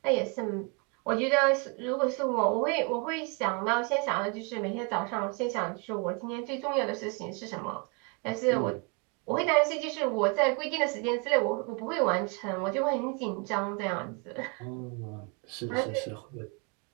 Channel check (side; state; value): left; quieter; 32.3 dB